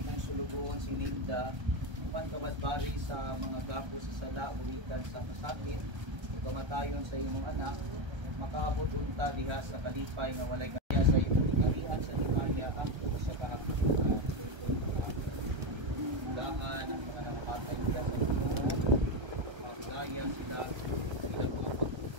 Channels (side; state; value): left; late; 1.3 ms